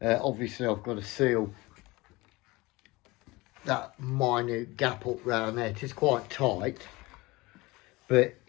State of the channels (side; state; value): right; quieter; 22.1 dB